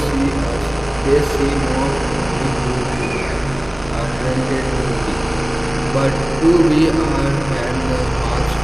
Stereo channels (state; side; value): noise; right; rumble, 18 dB below the sound